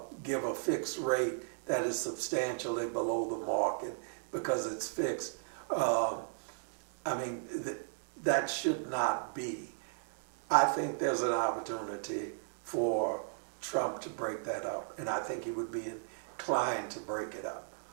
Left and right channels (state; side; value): silent; left; digital silence